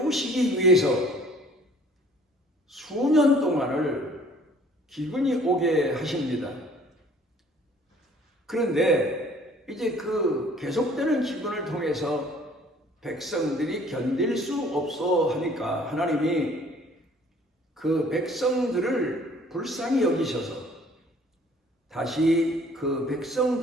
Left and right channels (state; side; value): normal; both; correlation 0.55